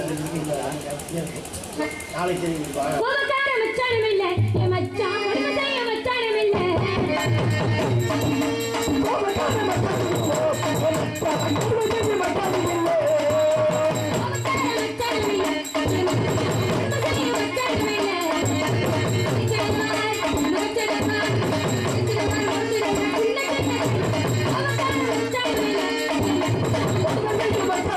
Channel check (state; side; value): identical; both; correlation 1.00